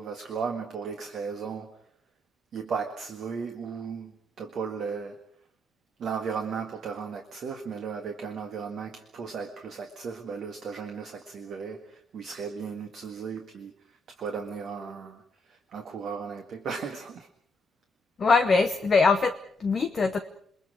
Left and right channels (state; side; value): normal; both; correlation 0.75